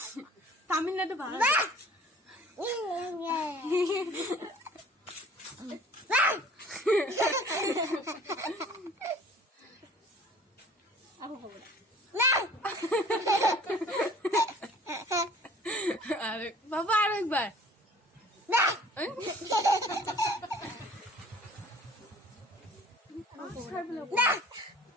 তামিলনাড়ু ভালো আরে বাবা আরেকবার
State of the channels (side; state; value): both; normal; correlation 0.50